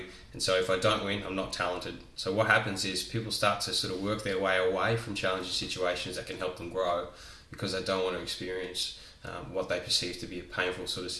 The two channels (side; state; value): both; identical; correlation 1.00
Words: and so if I don't win, I'm not talented." So what happens is people start to sort of work their way away from challenging situations that can help them grow because they don't want to experience what they perceive to be a painful sort of